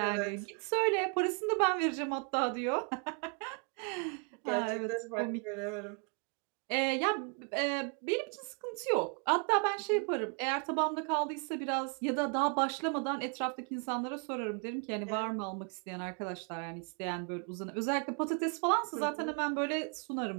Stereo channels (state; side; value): quieter; left; 37.5 dB